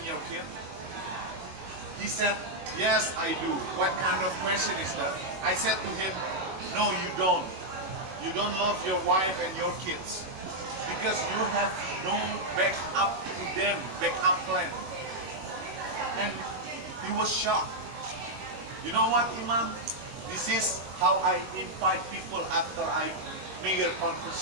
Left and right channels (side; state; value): left; late; 21 ms